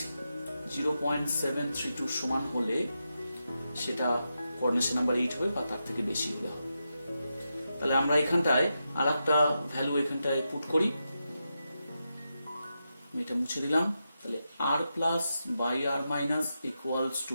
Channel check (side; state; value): both; inverted; correlation -0.87